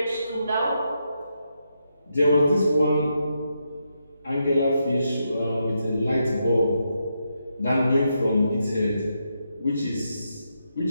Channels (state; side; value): inverted; both; correlation -0.82